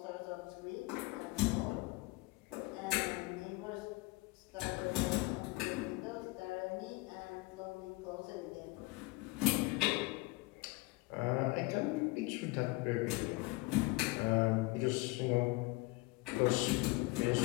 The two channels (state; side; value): quieter; right; 23.8 dB